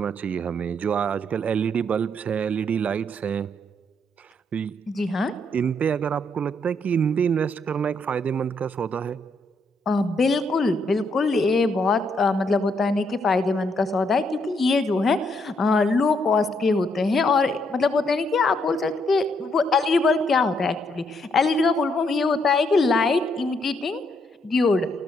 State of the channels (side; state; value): both; normal; correlation 0.74